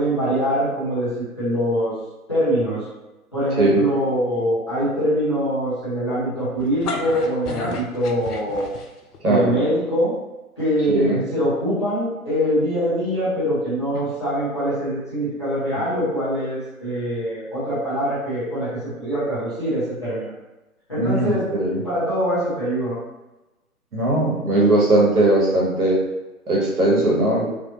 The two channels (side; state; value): both; normal; correlation 0.39